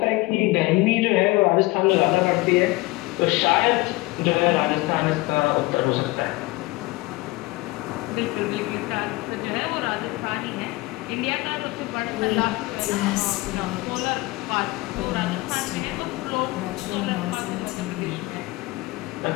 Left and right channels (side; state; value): right; quieter; 21.2 dB